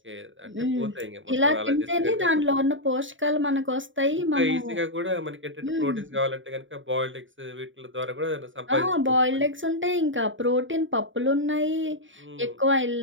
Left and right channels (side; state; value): left; late; 0.56 ms